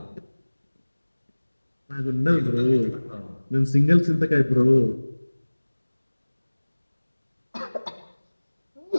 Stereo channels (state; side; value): inverted; both; correlation -1.00